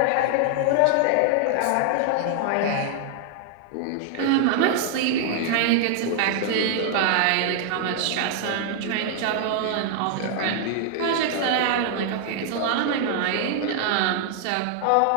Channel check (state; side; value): different; both; correlation -0.01